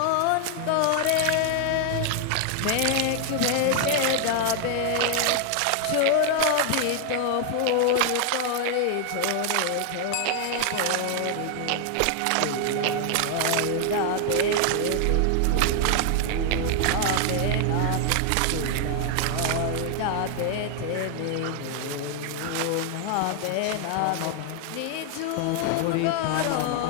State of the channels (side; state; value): both; different; correlation 0.00